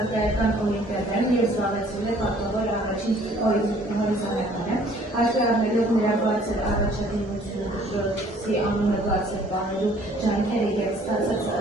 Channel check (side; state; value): both; normal; correlation 0.57